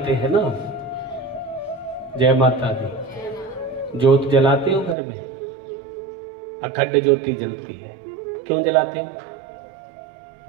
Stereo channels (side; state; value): left; drops out; at 5.0 s